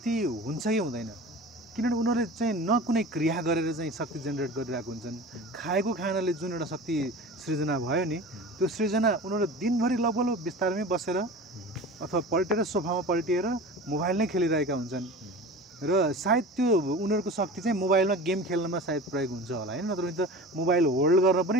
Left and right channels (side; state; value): both; normal; correlation 0.35